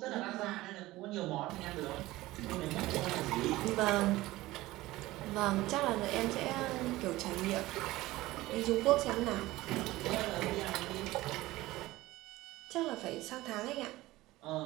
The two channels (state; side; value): quieter; left; 18.0 dB